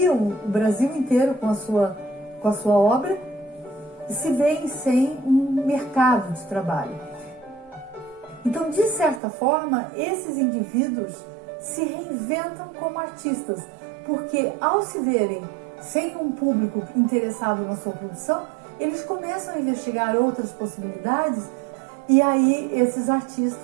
o Brasil inteiro com a sua obra se veem sem um mercado de trabalho. Então, de certa forma, esses indivíduos se reinventam como artistas, porque ao se verem sem um público interessado na sua produção, eles começam a investigar outras possibilidades, e aí esses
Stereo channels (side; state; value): left; drops out; at 9.2 s